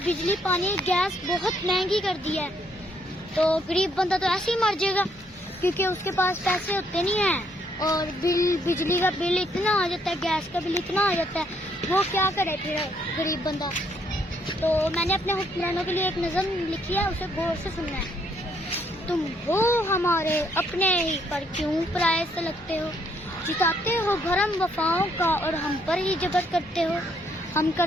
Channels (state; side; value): normal; both; correlation 0.71